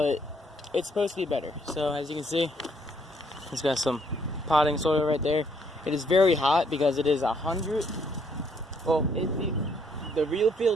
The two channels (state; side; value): normal; both; correlation 0.68